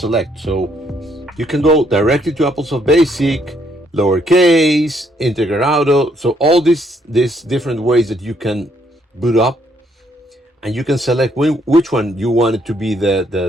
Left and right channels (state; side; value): normal; both; correlation 0.70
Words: So you can go directly to Applesoft Basic, lowercase, integer auto. So all these different ways that you can boot up, and you can select which one you want it to be